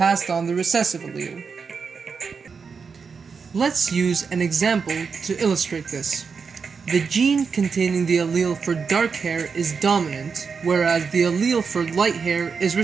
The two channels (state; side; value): quieter; left; 5.5 dB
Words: on the recessive allele. Let's use an example to illustrate this. The gene containing the allele for dark hair is dominant, whereas the allele for light hair is